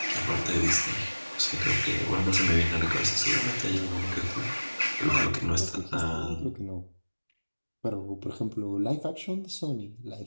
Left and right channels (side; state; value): both; inverted; correlation -1.00